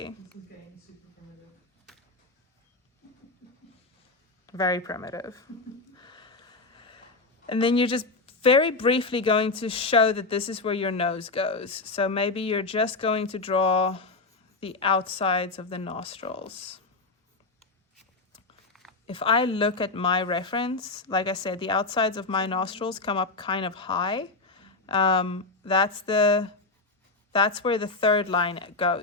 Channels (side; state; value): right; quieter; 3.6 dB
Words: This is getting super primitive. Very primitive. And then you're just very briefly going to show that this is where your nose goes. So maybe you're just going to draw the outsides of the nostrils. If I look at my reference, like I said, the outsides of my nostrils come up kind of high. That's where the 3rd line